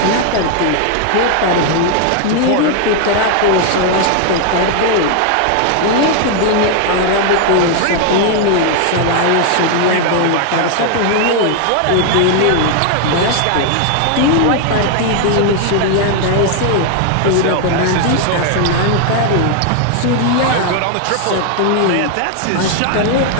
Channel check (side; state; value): both; different; correlation 0.00